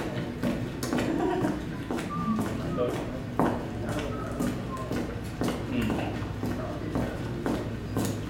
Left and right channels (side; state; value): both; identical; correlation 1.00